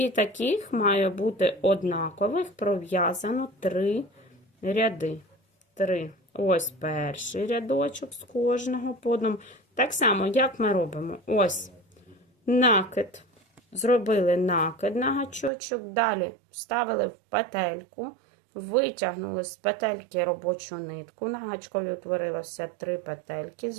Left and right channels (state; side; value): drops out; left; at 15.5 s